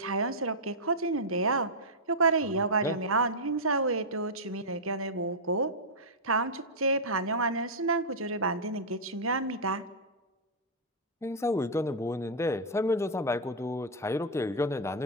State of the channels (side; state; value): both; normal; correlation -0.08